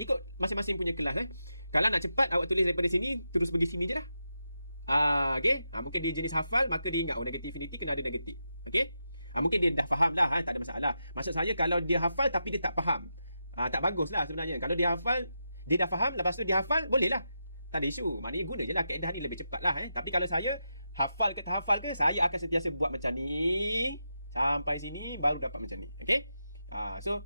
masing-masing punya kelas. Kalau nak cepat awak tulis daripada sini terus pergi sini je lah. Okay. Mungkin dia jenis hafal, maka dia ingat negative infinity kena ada negatif. Okay. Mungkin dia dah faham lah. Tak ada masalah. Maksud saya kalau dia hafal tapi dia tak faham, tak bagus lah sebenarnya. Kalau dia hafal, dia dah faham, lepas tu dia hafal, boleh lah. Tak ada isu. Maknanya guna je lah kaedah ni lebih cepat lah. Tapi kalau saya, hafal ke tak hafal ke, saya akan sentiasa buat macam ni. Sampai sini, baru dapat macam ni. Okay?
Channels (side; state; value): both; inverted; correlation -0.87